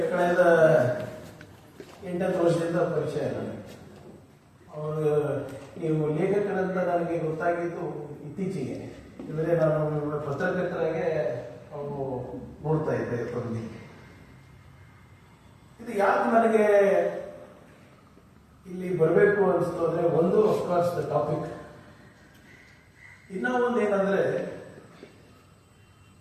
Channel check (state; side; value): identical; both; correlation 1.00